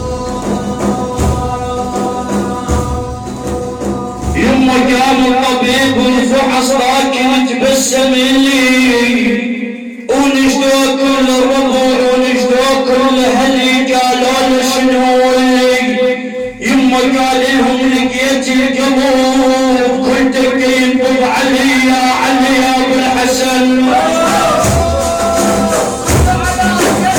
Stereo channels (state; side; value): identical; both; correlation 1.00